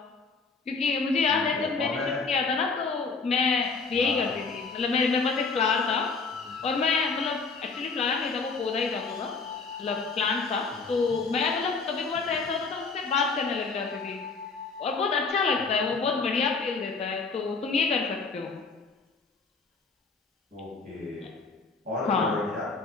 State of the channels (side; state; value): right; quieter; 4.4 dB